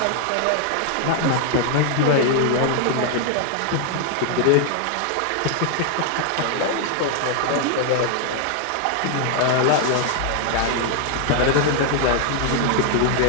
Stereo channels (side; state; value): both; different; correlation 0.00